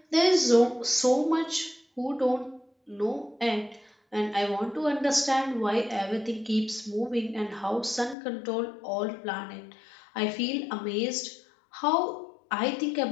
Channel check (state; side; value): drops out; right; at 8.2 s